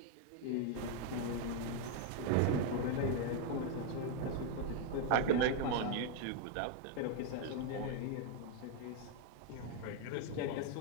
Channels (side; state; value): both; different; correlation 0.01